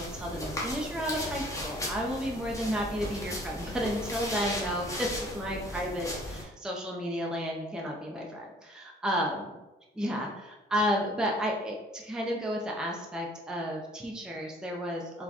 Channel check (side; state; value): both; normal; correlation 0.56